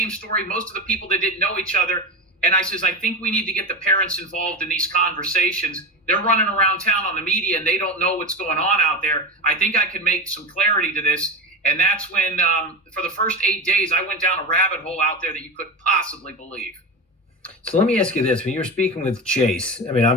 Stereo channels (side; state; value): both; normal; correlation 0.22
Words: story, most of the people that didn't know each other. And I says, I think we need to get the parents involved in these conversations. They're running around town on the media and they don't know what's going on out there. I think I can make some clarity to this. And that's when, for the first 8 days, I went down a rabbit hole out there that you couldn't possibly believe. So let me ask you this. When you were speaking with Chase, I mean,